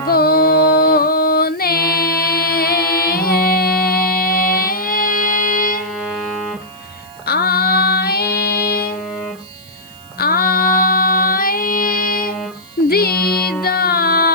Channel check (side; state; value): right; noise; hiss, 26 dB below the sound